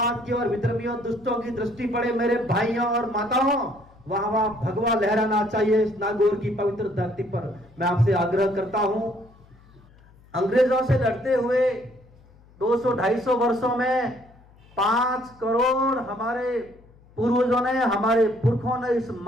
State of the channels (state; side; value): noise; left; hum, 27 dB below the sound